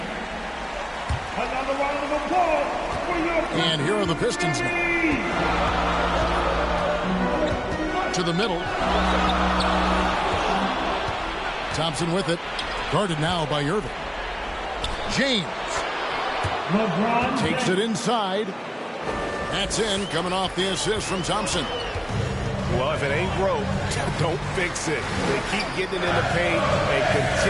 And here are the Pistons now. To the middle. Thompson with it. Guarded now by Irving. James. LeBron Takes it inside. That's in, coming off the assist from Thompson. Well, if it ain't broke, don't fix it. They keep getting it in the paint and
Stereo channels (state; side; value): identical; both; correlation 1.00